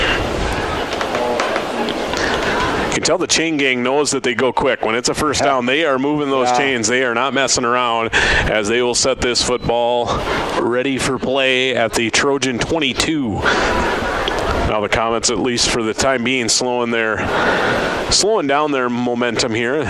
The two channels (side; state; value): both; identical; correlation 1.00